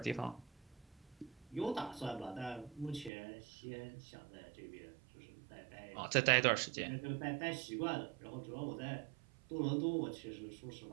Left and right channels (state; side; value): drops out; left; at 3.1 s